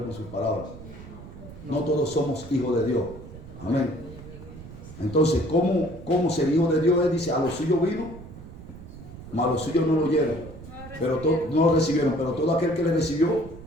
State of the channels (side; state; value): right; noise; rumble, 15 dB below the sound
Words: con sus palabras. No todos somos hijos de Dios. Amén. Entonces, ¿cómo ser hijo de Dios? Él dice, a los suyos vino, mas a los suyos no lo oyeron. Pero no lo recibieron. Pero todo aquel que le recibió,